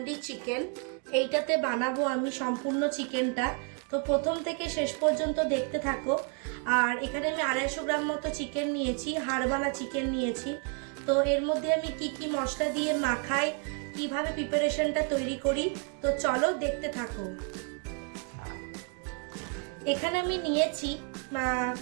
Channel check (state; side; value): quieter; left; 37.3 dB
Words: চিকেন। এইটাতে বানাবো আমি সম্পূর্ণ চিকেনটা। তো প্রথম থেকে শেষ পর্যন্ত দেখতে থাকো। আর এখানে আমি 250 গ্রাম মতো চিকেন নিয়েছি, হাড়ওয়ালা চিকেন নিয়েছি। তো এর মধ্যে আমি কি কি মশলা দিয়ে মাখাই, কিভাবে প্রিপারেশনটা তৈরি করি, তো চলো দেখতে থাকো। এখানে আমি নিয়েছি